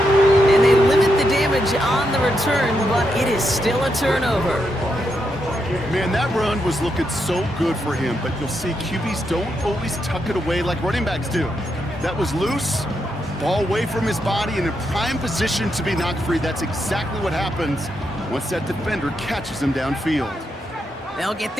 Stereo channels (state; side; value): normal; both; correlation 0.82